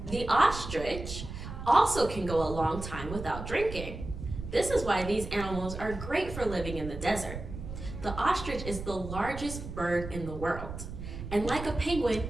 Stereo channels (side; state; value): right; noise; rumble, 9 dB below the sound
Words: The ostrich also can go a long time without drinking. This is why these animals are great for living in the desert. The ostrich is the largest bird in the world. And like a penguin,